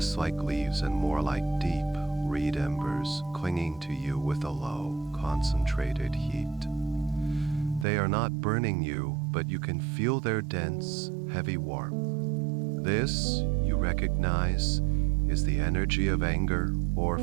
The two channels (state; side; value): drops out; left; at 7.9 s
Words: like leaves and more like deep, reed embers clinging to you with a low, concentrated heat. They are not burning you, but you can feel their dense, heavy warmth. This, you recognize, is the energy of anger or